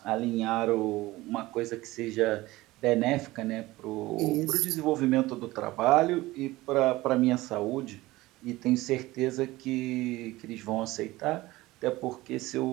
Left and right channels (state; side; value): quieter; left; 18.9 dB